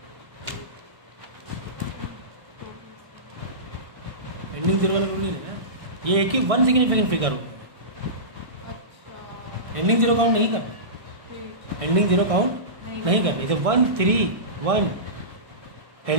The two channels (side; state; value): left; late; 1.6 ms